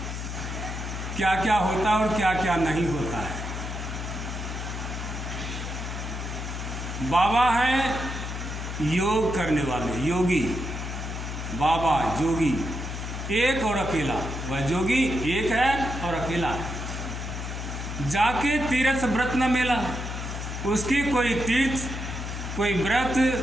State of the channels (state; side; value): noise; left; hum, 6 dB below the sound